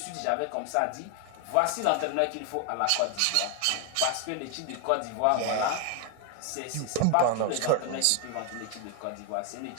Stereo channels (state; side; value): different; both; correlation 0.00